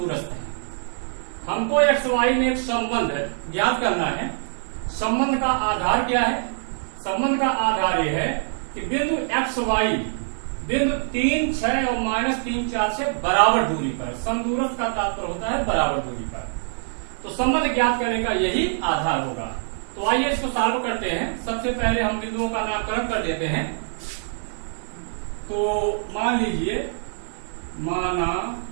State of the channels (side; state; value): left; silent; digital silence